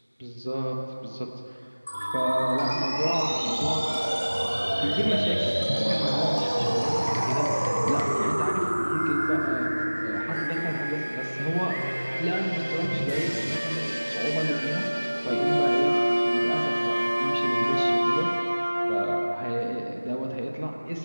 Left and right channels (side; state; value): both; inverted; correlation -1.00